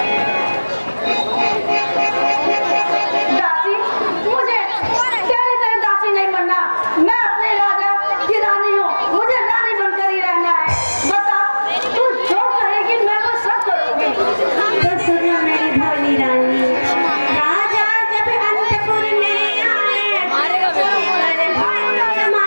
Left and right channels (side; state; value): both; inverted; correlation -1.00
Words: दासी, मुझे तेरी तरह दासी नहीं बनना। मैं अपने राजा की रानी हूँ, मुझे रानी बनकर ही रहना है। बता, तू जो कहेगी मैं वो सब करूँगी। तो सुनो मेरी भोली रानी, राजा जब अंतपुर में आए, बड़े भक्त